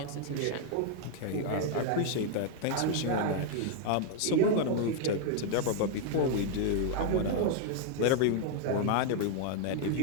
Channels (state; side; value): different; both; correlation 0.00